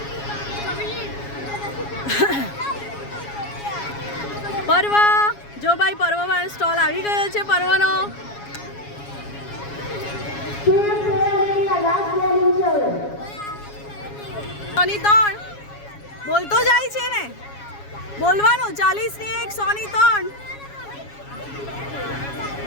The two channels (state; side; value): late; right; 7.2 ms